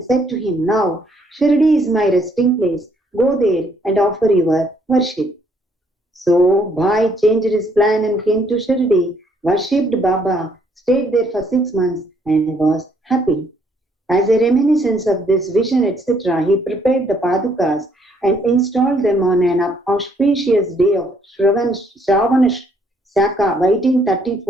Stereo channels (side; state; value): both; normal; correlation 0.68